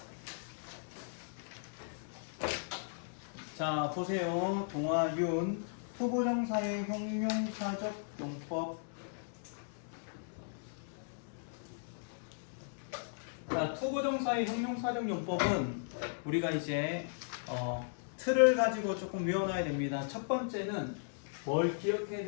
자, 보세요. 동아윤 투부정사의 형용사적 용법. 자, 투부정사의 형용사적 용법은 우리가 이제 틀을 가지고 조금 외워놔야 됩니다. 첫 번째는 뭘 기억해야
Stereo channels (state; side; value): silent; right; digital silence